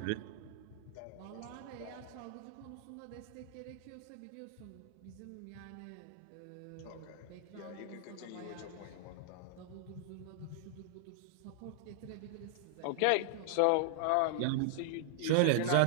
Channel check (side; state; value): both; different; correlation -0.01